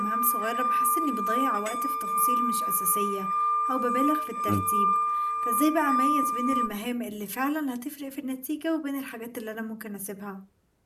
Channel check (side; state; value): both; identical; correlation 1.00